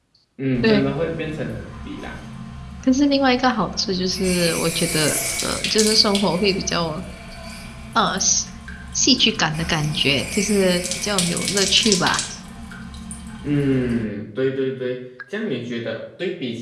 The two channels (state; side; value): identical; both; correlation 1.00